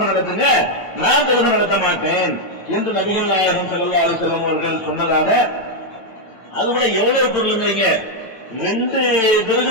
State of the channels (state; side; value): late; right; 9.0 ms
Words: நடத்துங்க, நான் தொழுகை நடத்த மாட்டேன் என்று நபிகள் நாயகம் ஸல்லல்லாஹு அலைஹி வஸல்லம் அவர்கள் சொன்னதாக. அது கூட எவ்வளவு பொருளுங்கிறீங்க, 2